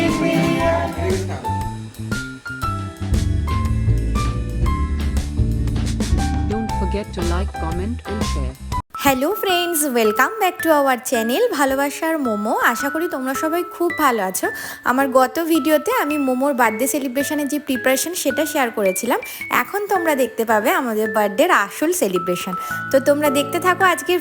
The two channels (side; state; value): both; identical; correlation 1.00